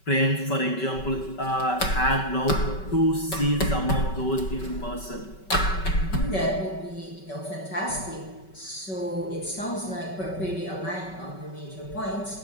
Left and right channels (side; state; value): right; late; 5.3 ms